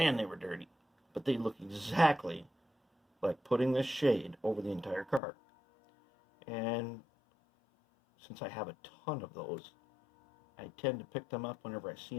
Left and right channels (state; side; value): drops out; right; at 5.2 s